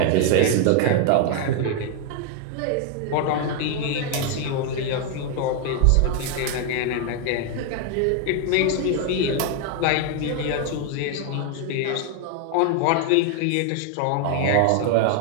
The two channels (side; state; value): both; different; correlation 0.00